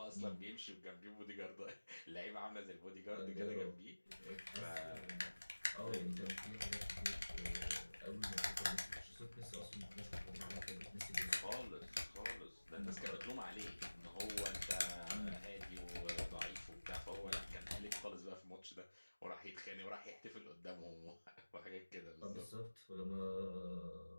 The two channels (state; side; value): inverted; both; correlation -1.00